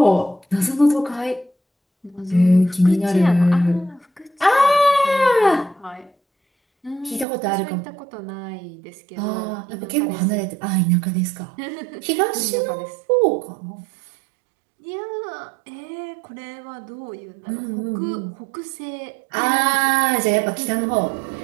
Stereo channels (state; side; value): drops out; left; at 7.2 s